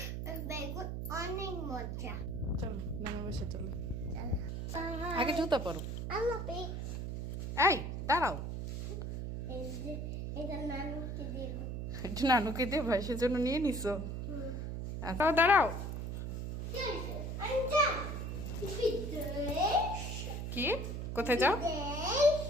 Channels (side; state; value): right; noise; hum, 4 dB below the sound